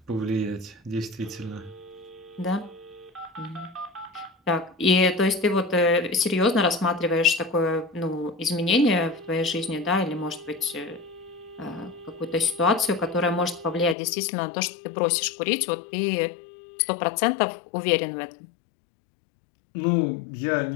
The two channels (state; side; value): drops out; right; at 14.0 s